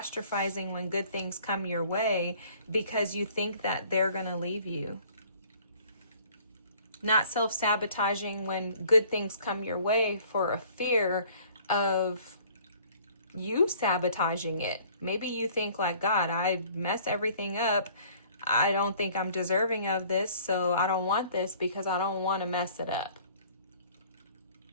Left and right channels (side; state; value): both; inverted; correlation -0.54